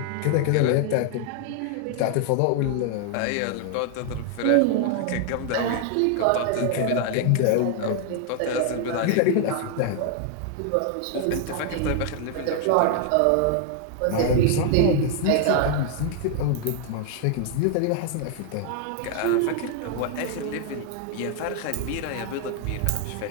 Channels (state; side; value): different; both; correlation 0.00